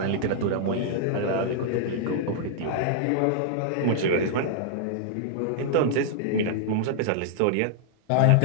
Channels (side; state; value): both; different; correlation -0.01